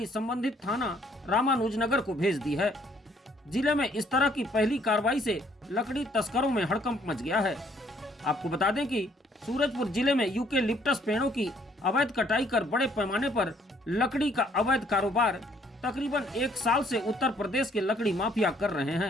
संबंधित थाना रामानुजनगर को भेज दी है। जिले में इस तरह की पहली कार्रवाई से लकड़ी तस्करों में हड़कंप मच गया है। आपको बता दें कि सूरजपुर जिले में यूकेलिप्टस पेड़ों की अवैध कटाई कर बड़े पैमाने पर लकड़ी का अवैध कारोबार तकरीबन 1 साल से उत्तर प्रदेश के लकड़ी माफिया कर रहे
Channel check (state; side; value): normal; both; correlation 0.64